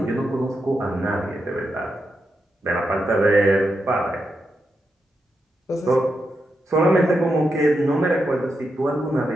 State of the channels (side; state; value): both; normal; correlation 0.85